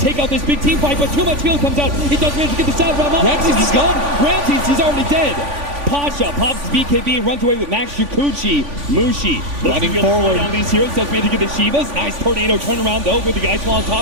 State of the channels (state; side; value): late; left; 3.5 ms